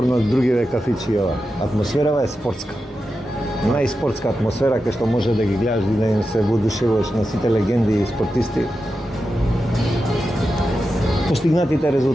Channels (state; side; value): normal; both; correlation 0.90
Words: од другиве кафичи ова. Атмосферава е спортска. Најспортска атмосфера кај што може да ги гледаш и да им се воодушевуваш на сите легенди и спортисти. Постигнатите